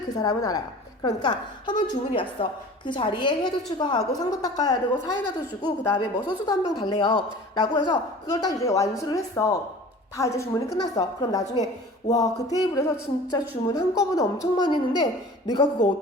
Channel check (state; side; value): normal; both; correlation 0.42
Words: 그 사람은 알아요. 그러니까 한번 주문이 왔어. 그 자리에 회도 추가하고 상도 닦아야 되고 사이다도 주고 그 다음에 뭐 소주도 한 병 달래요 라고 해서 그걸 딱 이제 완수를 했어. 다 이제 주문이 끝났어. 그럼 나중에 와 그 테이블에서 진짜 주문 한꺼번에 엄청 많이 했는데 내가 그거